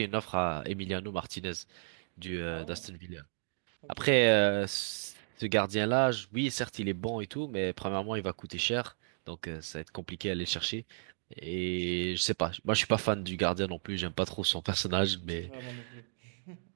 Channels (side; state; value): left; silent; digital silence